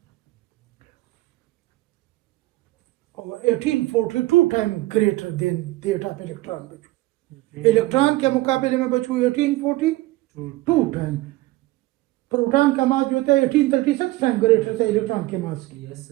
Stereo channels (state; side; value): quieter; left; 18.8 dB